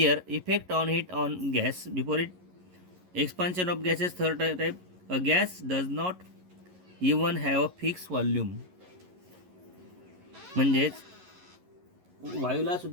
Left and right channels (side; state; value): left; late; 11 ms